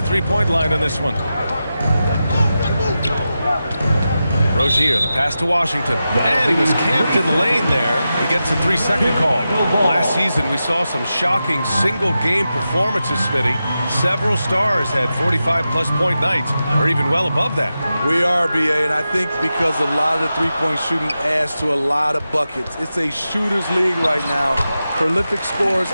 three-point line on this one. Rozier, the pass to Washington. And he was camped in the lane there. He gets a 3-second call. Last season, we saw some shocking single-game performances, Smitty. Several stars had 45-plus point nights, or even well above that. We are, B.A., and I think because a lot of the three-point shooting adds to a lot of buckets. It's a shooter's league right now. Prolific scores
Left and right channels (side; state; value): both; inverted; correlation -0.91